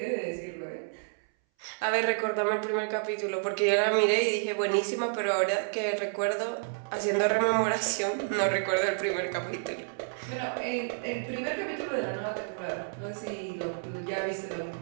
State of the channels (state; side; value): silent; left; 58 dB below the other